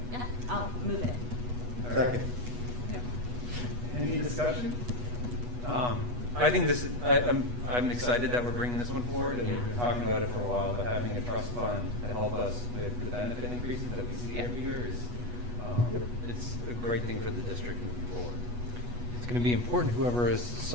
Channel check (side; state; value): left; late; 8.2 ms